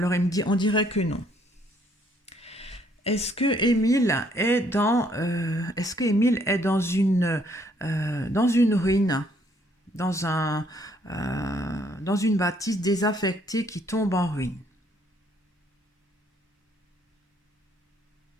il me dit, on dirait que non. Est-ce que Émile est dans une ruine, dans dans une bâtisse désaffectée qui tombe en ruine?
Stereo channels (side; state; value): both; normal; correlation 0.66